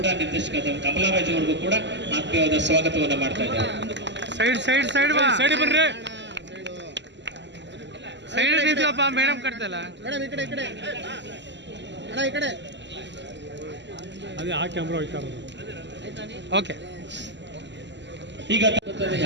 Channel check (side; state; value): left; late; 0.52 ms